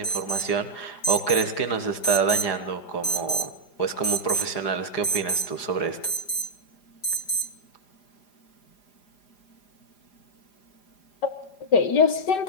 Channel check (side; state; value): right; late; 4.8 ms